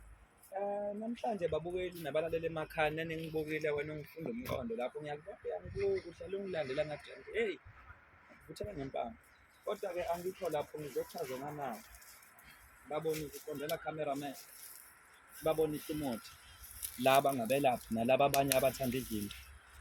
Namhlanje babukeli nabalaleli emakhaya neningibukile wena ungifunda umqondo lapho ngiyakubona uhlale ungilandela ngathi hey vuthela ngempama. Kodwa-ke angikho lapho ngizochaza nganawo. Babonise uqondela cameraman. Babonise umuthi. Laba ngabelaphi nalaba abanye abathanda izinto.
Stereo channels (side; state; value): both; identical; correlation 1.00